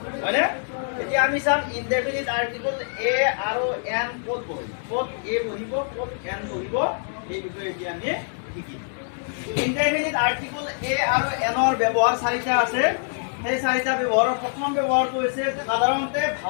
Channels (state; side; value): silent; right; digital silence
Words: হয়, হয়নে? এতিয়া আমি চাম ইনডেফিনিট আৰ্টিকল এ আৰু এন ক'ত বহিব, ক'ত এ বহিব, ক'ত এন বহিব, এই বিষয়ে এতিয়া আমি শিকিম। ইনডেফিনিট আৰ্টিকল এ আৰু এনৰ ব্যৱহাৰ চাৰিটা আছে। সেই চাৰিটা ব্যৱহাৰৰ প্ৰথম ব্যৱহাৰটো হৈছে সাধাৰণতে